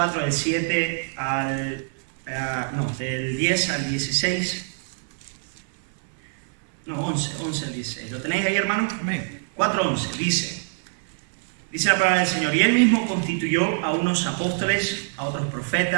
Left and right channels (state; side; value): silent; left; 58 dB below the other